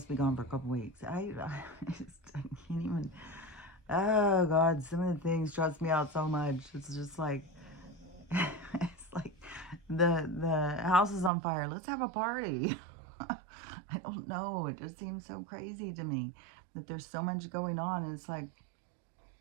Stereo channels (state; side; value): drops out; left; at 11.3 s